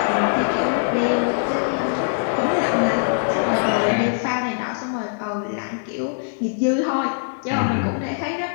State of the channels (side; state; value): right; silent; digital silence